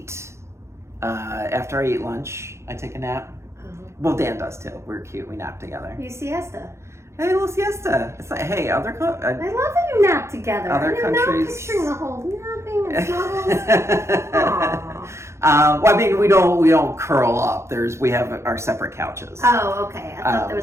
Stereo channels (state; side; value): late; left; 0.13 ms